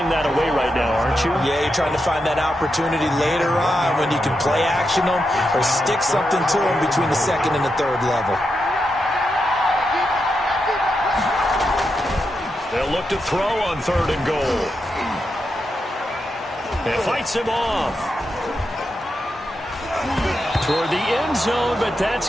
that away right now, aren't you? Yeah, you're trying to find that opportunity later on when you can play action them or stick something to them between the 2nd and the 3rd level. They'll look to throw on 3rd and goal. It fights him off. Toward the end zone, but that's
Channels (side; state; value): both; normal; correlation 0.86